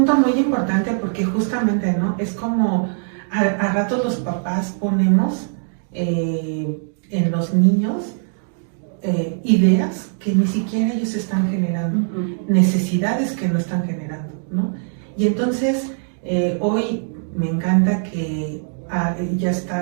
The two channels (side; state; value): left; silent; digital silence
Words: muy importante, porque justamente, ¿no? Es como a ratos los papás ponemos en los niños ideas que ni siquiera ellos están generando, necesidades que no están generando, ¿no? Y entonces hoy me encanta que ya